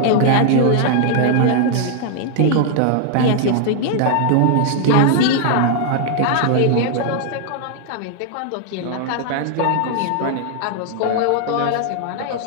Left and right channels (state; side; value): different; both; correlation 0.00